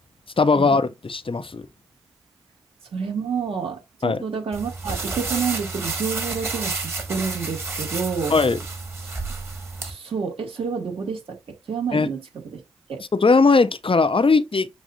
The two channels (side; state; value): both; normal; correlation 0.64